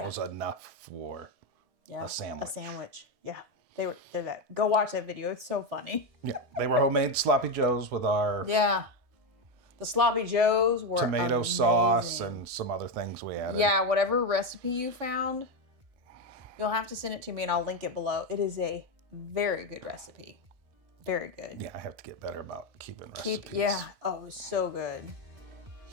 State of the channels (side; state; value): left; late; 1.6 ms